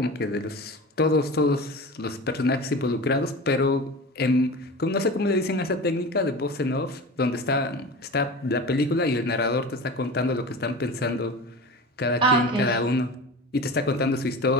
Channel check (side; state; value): both; normal; correlation 0.32